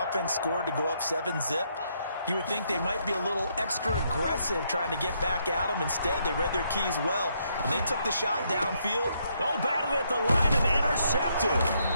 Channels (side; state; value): both; inverted; correlation -0.74